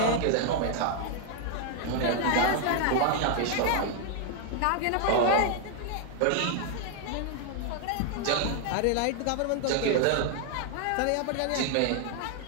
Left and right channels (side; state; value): both; different; correlation 0.00